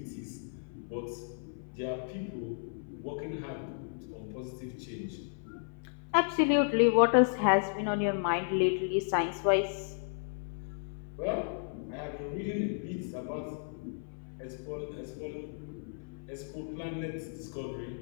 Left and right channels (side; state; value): right; silent; 55 dB below the other